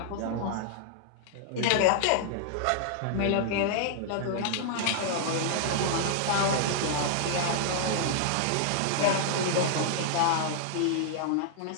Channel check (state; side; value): different; both; correlation -0.01